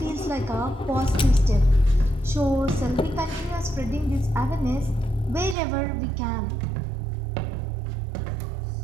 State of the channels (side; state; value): left; drops out; at 5.6 s